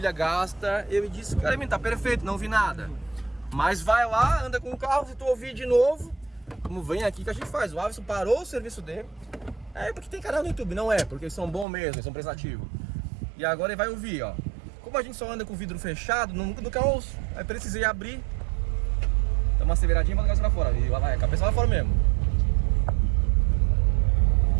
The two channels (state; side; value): drops out; left; at 11.7 s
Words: gasta, ele disse, cara, tá perfeito, não vi nada. Mas vai lá, anda com o carro, se tu ouvir de novo, como vem aqui que a gente faz, o Alisson parou o serviço dele. É porque tem canal no YouTube, não é, porque eles são bons mesmo, eles são prestativos. E agora ele vai ouvir, ó. Como a gente só anda com o vidro fechado, nunca ouço. Aí precisei abrir. Dá uma aceleradinha pra cabeça lá fora. E vai, a cabeça lá fora mesmo.